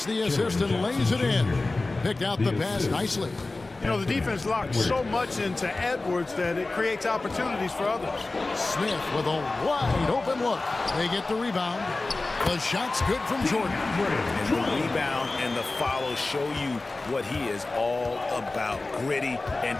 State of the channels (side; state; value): right; quieter; 3.2 dB